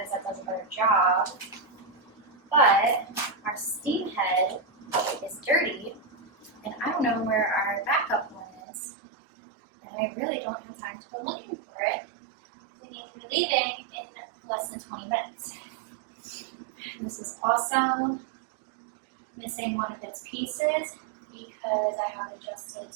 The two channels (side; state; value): left; drops out; at 8.6 s